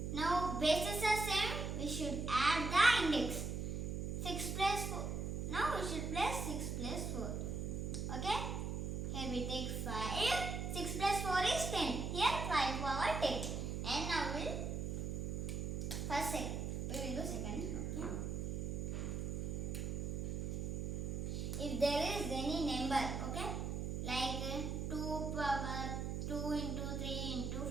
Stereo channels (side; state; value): right; noise; hum, 2 dB below the sound